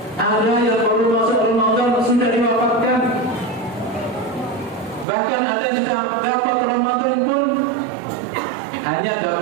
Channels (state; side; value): drops out; left; at 5.1 s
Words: Ada yang baru masuk Ramadan sudah diwafatkan. Bahkan ada yang sudah dapat Ramadan pun hanya